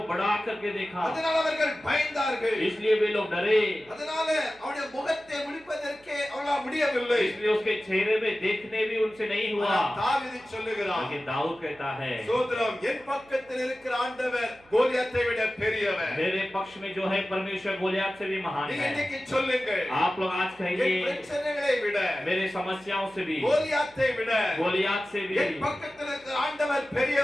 बड़ा करके देखा, அதனால அவர்கள் பயந்தார்கள். इसलिए वे लोग डरे। அதனால அவருடைய முகத்தை முடிப்பதற்கே அவர்களால் முடியவில்லை. इसलिए उसके चेहरे में देखने भी उनसे नहीं हुआ। தாவீது சொல்லுகிறார், लेकिन दाऊद कहता है, சோத்ரம் என் பக்கத்தில் இருக்கிற ஆண்டவர் கோலியாத்தை விட பெரியவர். मेरे पक्ष में जो है परमेश्वर गोलियत से भी महान நீங்க है। இன்னைக்கு சொல்லுங்க, आप लोग आज என் कहिए, பிரச்சனைகளை விட मेरे समस्याओं से भी, கோலியாத்தை விட गोलियत से भी என் பக்கத்தில் இருக்கிற ஆண்டவர்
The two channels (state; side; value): noise; right; hum, 29 dB below the sound